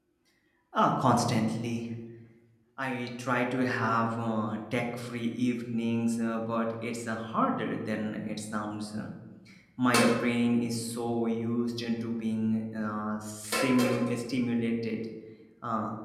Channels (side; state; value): both; identical; correlation 1.00